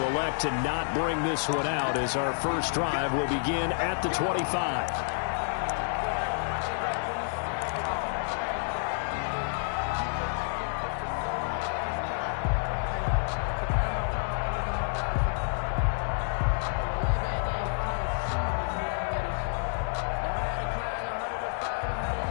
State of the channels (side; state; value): right; silent; 58 dB below the other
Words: elect to not bring this one out as our first drive will begin at the 25.